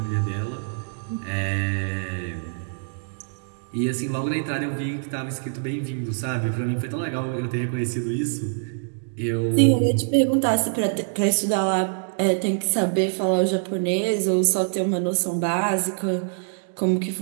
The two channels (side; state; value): left; silent; digital silence